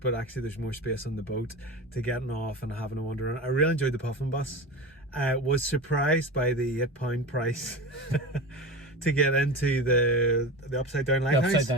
actually there's more space on the boat to getting off and having a wander around. I really enjoyed the puffin bus. Was surprised by the £8 price to get into the upside down lighthouse. The upside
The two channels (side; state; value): both; normal; correlation 0.28